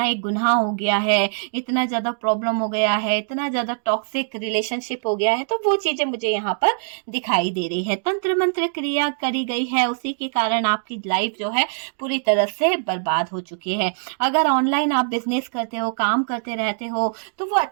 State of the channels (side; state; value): left; silent; digital silence